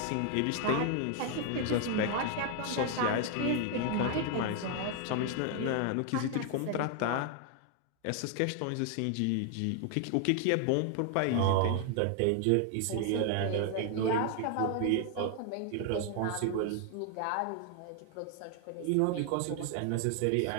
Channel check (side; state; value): both; different; correlation 0.00